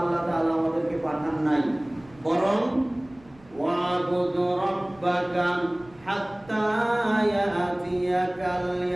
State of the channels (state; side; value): noise; right; rumble, 27 dB below the sound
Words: আল্লাহ তাআলা আমাদেরকে পাঠান নাই, বরং ওয়াবুদ রাব্বাকা হাত্তা ইয়াতিয়াকাল